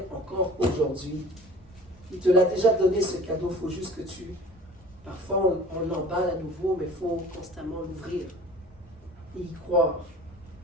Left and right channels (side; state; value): both; normal; correlation 0.45